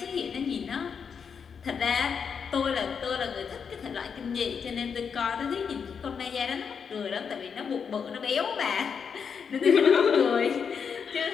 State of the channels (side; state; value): right; quieter; 6.5 dB